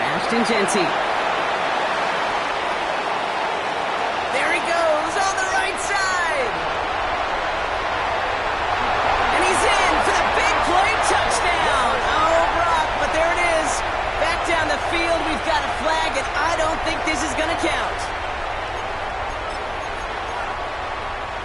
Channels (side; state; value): both; identical; correlation 1.00